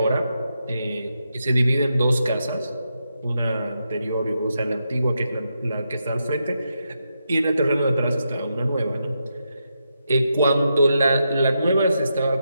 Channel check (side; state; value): both; inverted; correlation -0.84